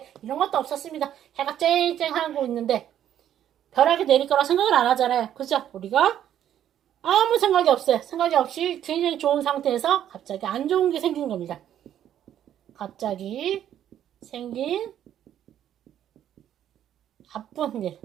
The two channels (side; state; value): left; quieter; 10.7 dB